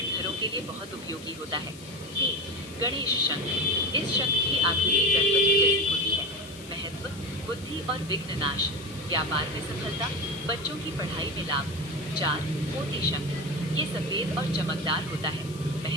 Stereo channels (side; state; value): left; noise; hiss, 19 dB below the sound